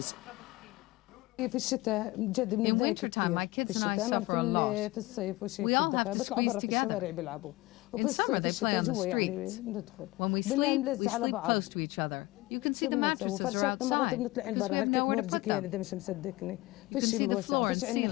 In wintertime, my kids and I suffer a lot. We all have to squeeze together. In summer, they play on the streets. When we sleep close to each other. You can see the mattresses are outside, because we have nowhere to put them. You can see the floor and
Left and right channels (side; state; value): right; quieter; 20.4 dB